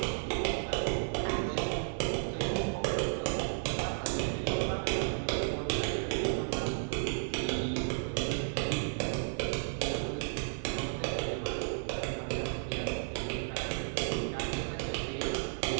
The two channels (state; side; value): silent; left; digital silence